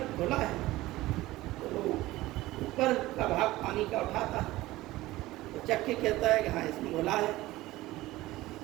घुला है। तो ऊपर का भाग पानी का उठाता है, तो चख के कहता है कि हाँ इसमें घुला है।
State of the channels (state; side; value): quieter; left; 17.7 dB